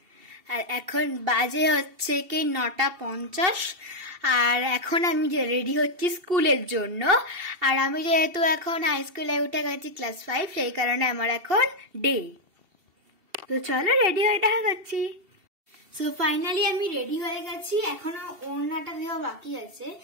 আর এখন বাজে হচ্ছে কি 9:50 আর এখন আমি রেডি হচ্ছি স্কুলের জন্য। আর আমি যেহেতু এখন হাই স্কুলে উঠে গেছি ক্লাস 5, সেই কারণে আমার এখন ডে। তো চলো রেডি হয়ে দেখা করছি। সো ফাইনালি আমি রেডি হয়ে গেছি, এখনো ওড়নাটা দেওয়া বাকি আছে।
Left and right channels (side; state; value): left; late; 2.7 ms